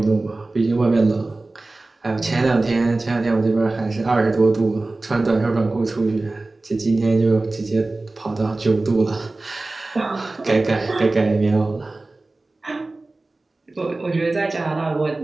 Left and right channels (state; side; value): quieter; left; 3.1 dB